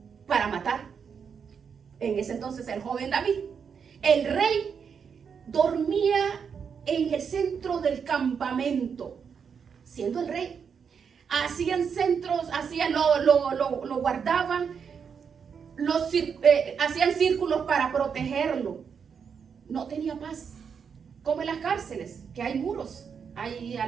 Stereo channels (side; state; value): left; quieter; 6.6 dB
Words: para matar. En ese entonces el joven David. El rey dormía en el centro del campamento, siendo el rey. Hacían centros, lo guardaban, hacían círculos para protegerlo. No tenía paz. Como en las cárceles, que hay muros, hay